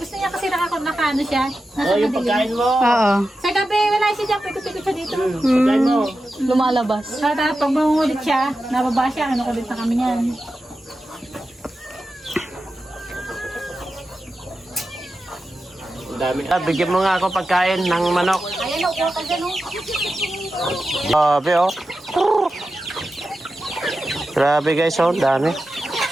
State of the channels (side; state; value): both; normal; correlation 0.92